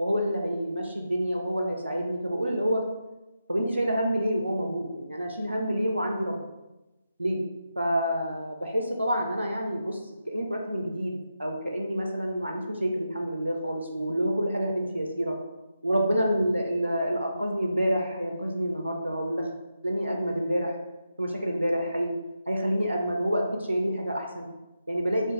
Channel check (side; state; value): both; inverted; correlation -0.87